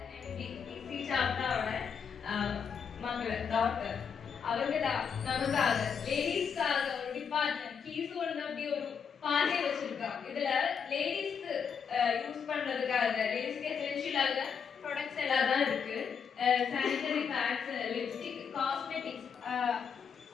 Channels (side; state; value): right; quieter; 6.7 dB